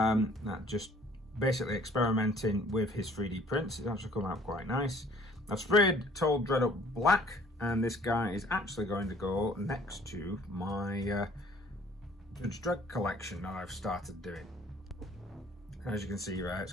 just basically experimenting with his 3D prints. It's actually come out quite nice. I've sprayed Told Dredd up black, and this guy is actually going to go next to my Judge Dredd collection that I've started doing. As you can see, right, it's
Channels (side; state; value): both; normal; correlation 0.56